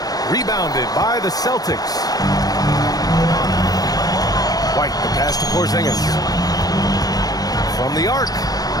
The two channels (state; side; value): late; right; 0.18 ms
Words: Rebounded by the Celtics. White, the pass to Porzingis. From the arc.